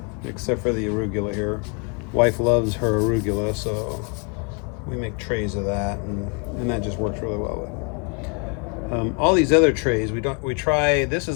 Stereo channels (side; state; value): right; quieter; 34.9 dB